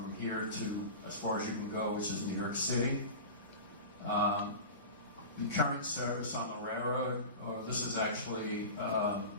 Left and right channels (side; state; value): both; inverted; correlation -0.30